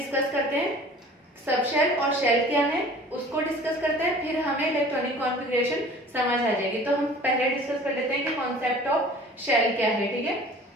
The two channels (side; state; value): both; normal; correlation 0.46